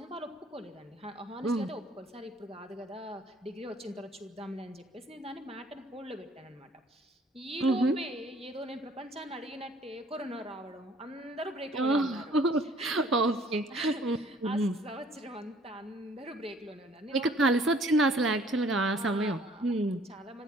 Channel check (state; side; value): normal; both; correlation 0.58